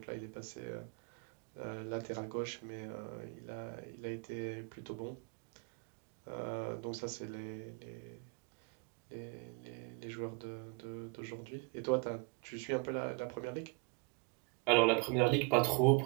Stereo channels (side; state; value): left; quieter; 32.5 dB